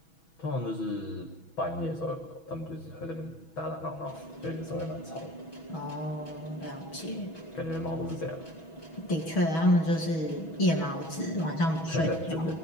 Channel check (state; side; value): late; right; 6.2 ms